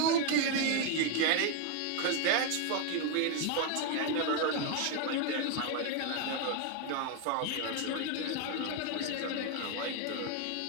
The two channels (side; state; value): both; different; correlation 0.01